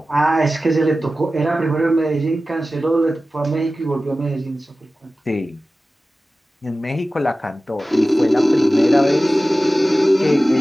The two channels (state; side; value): normal; both; correlation 0.95